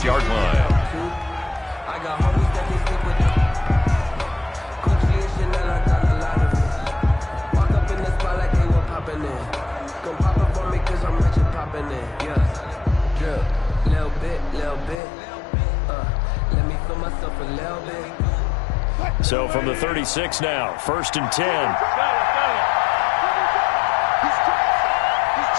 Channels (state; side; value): drops out; right; at 15.0 s